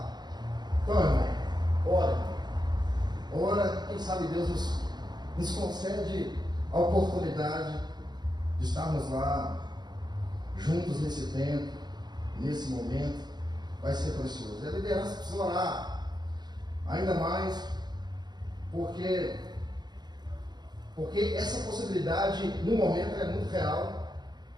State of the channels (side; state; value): left; late; 0.20 ms